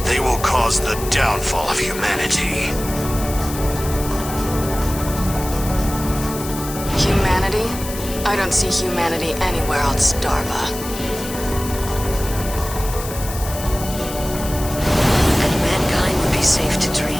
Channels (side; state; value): left; noise; hiss, 10 dB below the sound